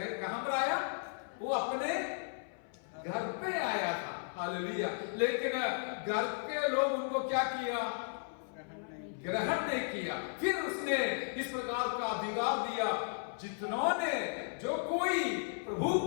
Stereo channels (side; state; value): right; silent; 54 dB below the other